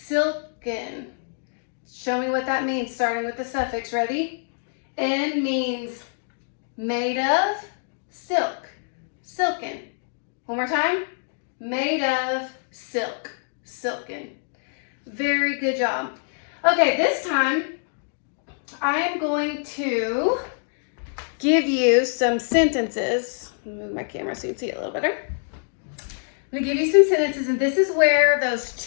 Show me what that means, starting with the suffix. Ready? N means made of silk. Silken. One more time. Made of silk. Silken. Very good job. Okay, this time I am going to give you some sentences. Move my camera so you can see it a little better. I'm going to give you some sentences, and this is where those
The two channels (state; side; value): silent; right; 61 dB below the other